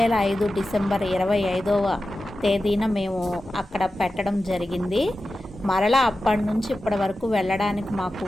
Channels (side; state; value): both; normal; correlation 0.93